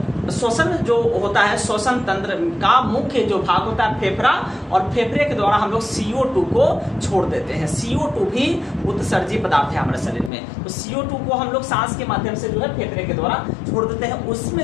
श्वसन जो होता है, श्वसन तंत्र का मुख्य जो भाग होता है फेफड़ा, और फेफड़े के द्वारा हम लोग CO2 को छोड़ देते हैं। CO2 भी उत्सर्जित पदार्थ है हमारे शरीर में। तो CO2 को हम लोग सांस के माध्यम से जो है फेफड़े के द्वारा छोड़ देते हैं।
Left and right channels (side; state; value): right; drops out; at 10.3 s